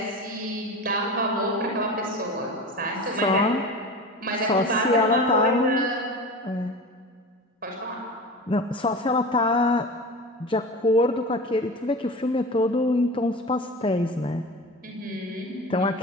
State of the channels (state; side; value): normal; both; correlation 0.32